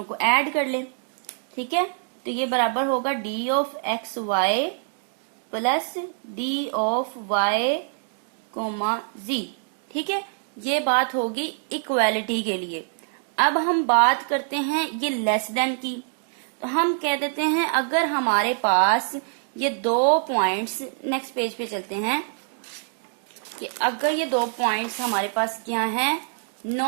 को ऐड कर लें। ठीक है, तो ये बराबर होगा d of xy plus d of y, z। ठीक है, ये बात होगी इक्वालिटी के लिए। अब हम बात करते हैं ये लेस देन की, तो हम कह देते हैं अगर हमारे पास ये दो पॉइंट्स, नेक्स्ट पेज पे चलते हैं, कि अगर ये दो पॉइंट्स हमारे पास क्या हैं,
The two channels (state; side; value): silent; left; digital silence